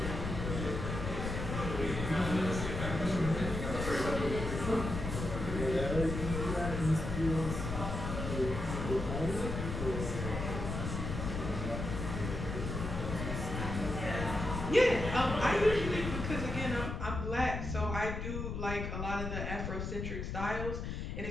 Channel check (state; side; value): noise; left; rumble, 4 dB below the sound